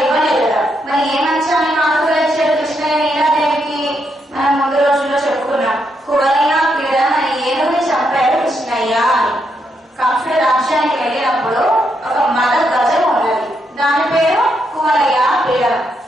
ఇవ్వలేదు కదా. మరి ఏ మంచాన్ని కానుకగా ఇచ్చాడు కృష్ణ నీలాదేవికి? మనం ముందు రోజుల్లో చెప్పుకున్నాం. కువలయ క్రీడ రామాలయానికి వెళ్ళినప్పుడు ఒక మద గజం ఉన్నది. దాని పేరు కువలయ పీడనం.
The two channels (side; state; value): both; normal; correlation 0.79